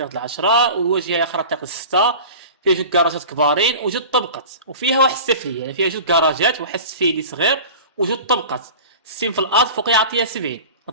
د العشرة، والواجهة الأخرى الطريق الستة. فيها جوج كراجات كبارين وجوج طبقات، وفيها واحد السفلية، يعني فيها جوج كراجات واحد السفيلي صغير وجوج طبقات. السين في الارض فوق يعطيها 70.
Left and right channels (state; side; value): inverted; both; correlation -0.36